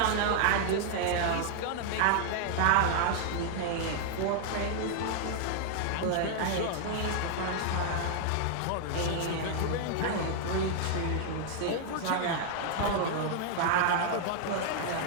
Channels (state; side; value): different; both; correlation 0.00